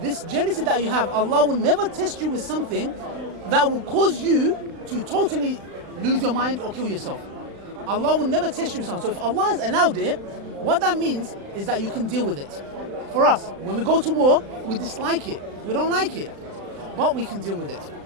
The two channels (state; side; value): late; left; 35 ms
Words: jealousy that you have, Allah will never test you with something that will cause you to totally lose your mind or kill yourself. Allah will never test you with something. So if Allah has allowed it, what that means is that you can deal with it. For us, when we go to war, we dislike it. We don't like it. But we can deal with it.